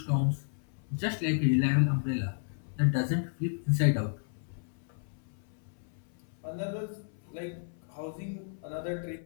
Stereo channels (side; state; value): right; silent; 56 dB below the other